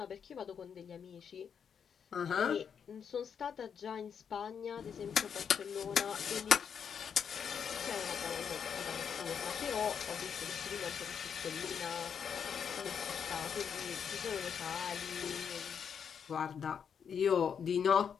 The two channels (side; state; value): right; quieter; 7.3 dB